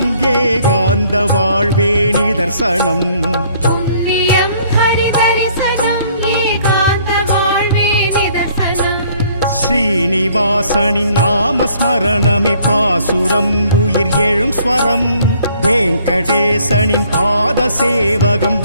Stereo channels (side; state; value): both; inverted; correlation -0.61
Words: ஏகாந்த வாழ்வே நிதர்சனம் புண்ணியம் ஹரிதரிசனம் ஏகாந்த வாழ்வே நிதர்சனம் ஸ்ரீனிவாசனின் நாமஸ்மரணமே பாசுரம் உயிர் எழும் ஸ்வரம் வெங்கடேசனின் பாத சேவகம்